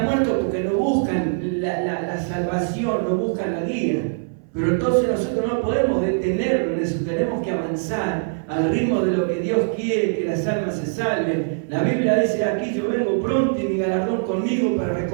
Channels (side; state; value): left; silent; 64 dB below the other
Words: muertos porque no buscan la salvación, no buscan la guía. Pero entonces nosotros no podemos detenernos en eso, tenemos que avanzar al ritmo de lo que Dios quiere, que las almas se salven. La Biblia dice aquí, yo vengo pronto y mi galardón conmigo para